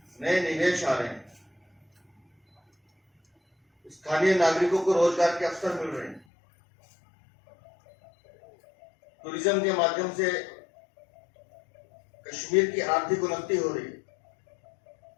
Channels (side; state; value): right; drops out; at 6.2 s